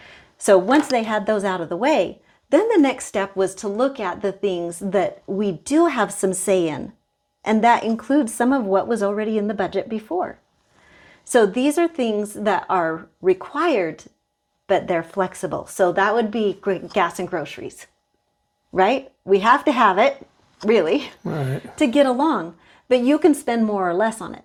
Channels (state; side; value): identical; both; correlation 1.00